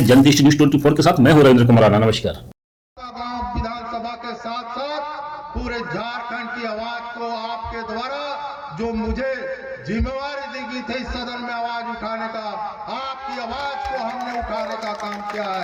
जनदृष्टि न्यूज 24 के साथ। मैं हूं रविंद्र कुमार, नमस्कार। विधानसभा के साथ साथ पूरे झारखंड की आवाज को आपके द्वारा जो मुझे जिम्मेवारी दी गई थी सदन में आवाज उठाने का, आपकी आवाज को हमने उठाने का काम किया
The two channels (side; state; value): both; identical; correlation 1.00